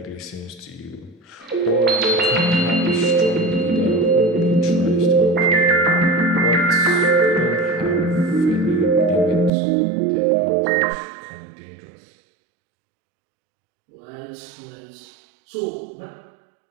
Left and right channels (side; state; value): left; drops out; at 9.5 s